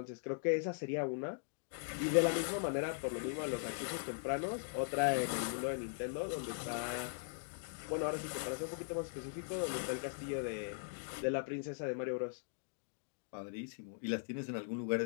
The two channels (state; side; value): silent; right; digital silence